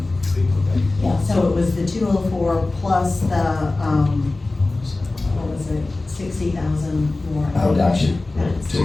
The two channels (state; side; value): quieter; right; 3.1 dB